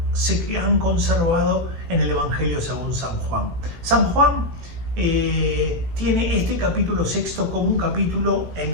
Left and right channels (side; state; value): left; late; 18 ms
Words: se han conservado en el Evangelio según San Juan. San Juan tiene este capítulo 6 como un capítulo